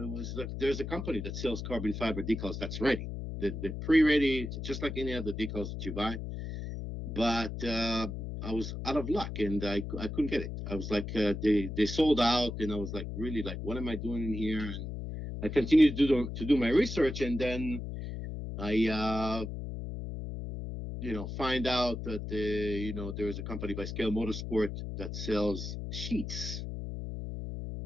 was like, there's a company that sells carbon fiber decals that's ready. The pre-ready, just like any other decals that you buy. But I was out of luck, and I couldn't get it. I was like, they sold out, and I was like, really, like, what am I doing in here? And I continued to do my research, and then I find out that there is a company by Scale Motorsport that sells sheets.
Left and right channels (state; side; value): noise; left; hum, 6 dB below the sound